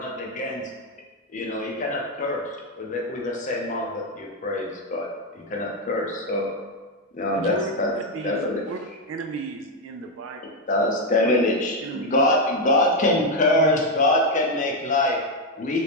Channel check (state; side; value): normal; both; correlation 0.04